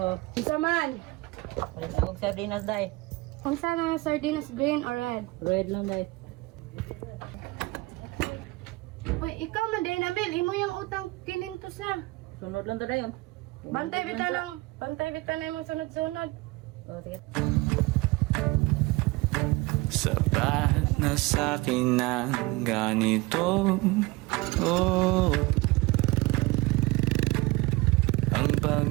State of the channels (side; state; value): left; quieter; 22.4 dB